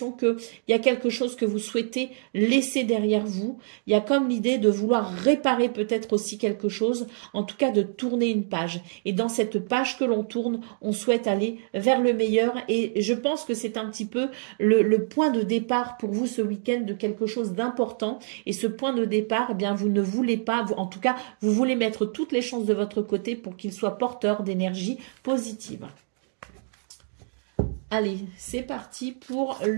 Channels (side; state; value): left; silent; digital silence